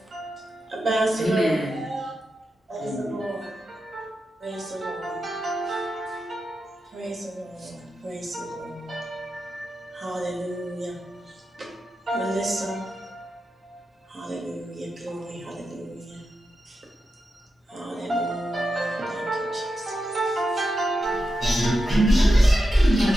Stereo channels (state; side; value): normal; both; correlation 0.89